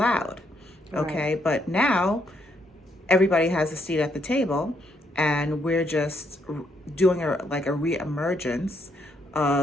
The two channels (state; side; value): normal; both; correlation 0.74